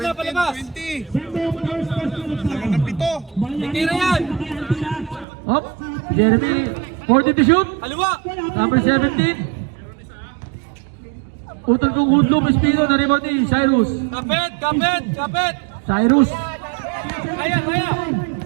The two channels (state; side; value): drops out; left; at 5.2 s